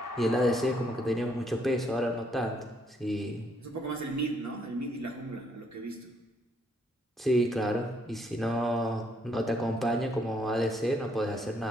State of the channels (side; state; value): both; normal; correlation 0.71